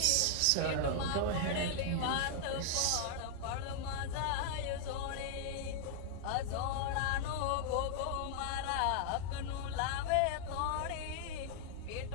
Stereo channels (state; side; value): different; both; correlation -0.01